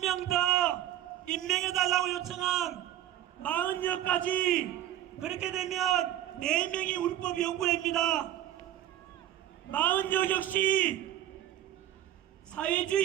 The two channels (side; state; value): left; quieter; 12.2 dB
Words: 더 임명해달라고 요청한 40여까지 그렇게 되면 4명이 우리법연구회입니다. 40여 역시